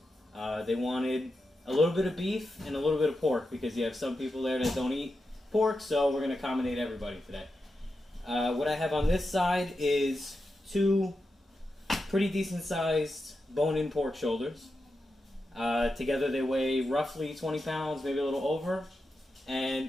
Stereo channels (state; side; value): normal; both; correlation 0.89